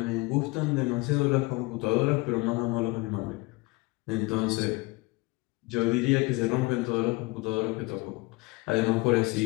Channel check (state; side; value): quieter; right; 23.9 dB